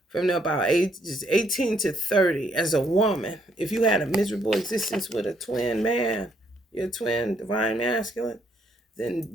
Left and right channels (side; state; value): both; normal; correlation 0.70